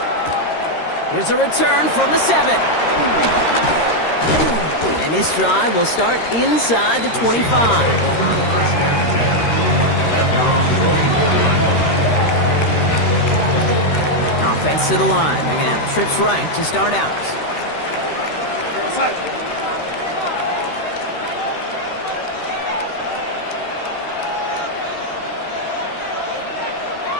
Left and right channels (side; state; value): right; late; 13 ms